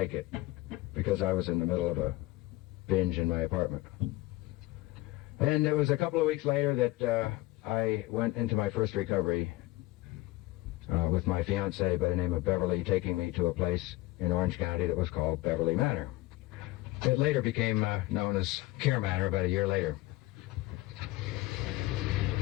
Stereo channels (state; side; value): quieter; right; 19.0 dB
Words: it because I was in the middle of a binge in my apartment. And it was a couple of weeks later that I went into my first recovery with my fiancée by the name of Beverly, taking me to a place in Orange County that was called Beverly Manor. It later became known as Care Manor about a year later.